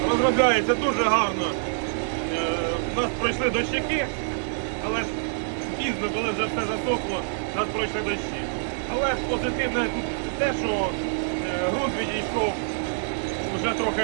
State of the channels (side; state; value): left; silent; digital silence